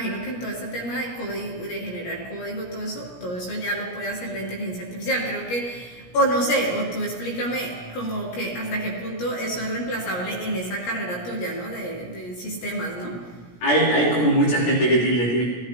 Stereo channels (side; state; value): right; late; 17 ms